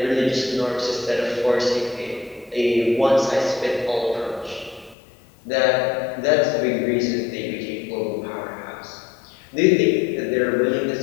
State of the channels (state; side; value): drops out; right; at 5.0 s